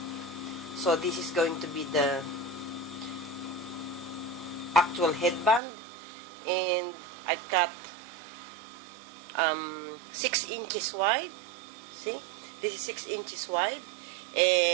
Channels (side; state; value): left; drops out; at 5.6 s